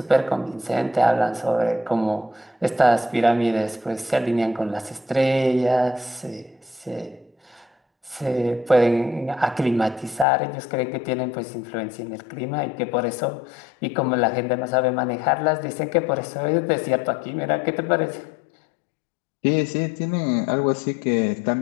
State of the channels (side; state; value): right; drops out; at 10.2 s